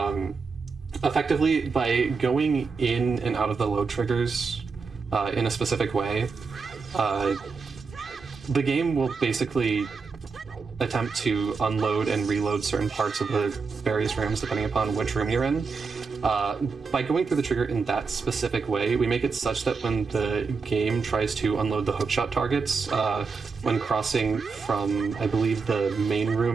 effectively by going in and out of the load triggers in a specific way, the game will basically attempt to unload and reload certain parts of the various rooms depending upon which room you're in. By going through the trigger in that specific way, we make it such that when the game tries to unload the hookshot targets, when crossing from, I believe, the main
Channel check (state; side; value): quieter; left; 4.8 dB